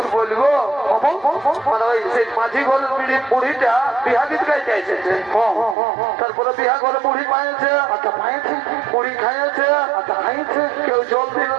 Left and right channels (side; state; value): left; drops out; at 5.8 s